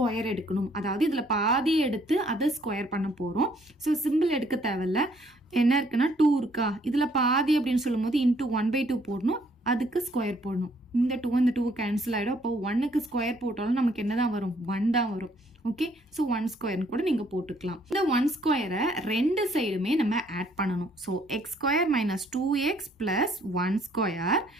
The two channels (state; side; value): normal; both; correlation 0.65